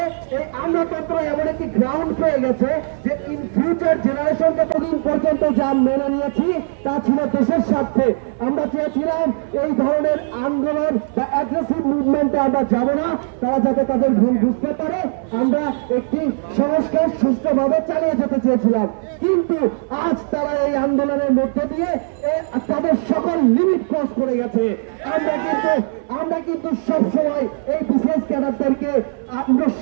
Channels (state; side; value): silent; left; 62 dB below the other